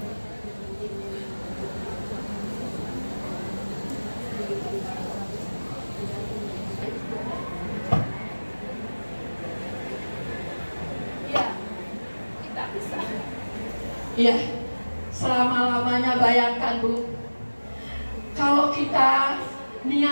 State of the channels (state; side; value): inverted; both; correlation -1.00